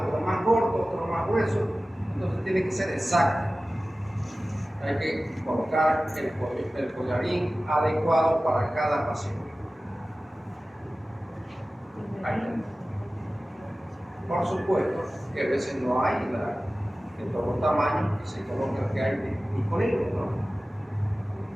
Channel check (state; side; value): normal; both; correlation 0.96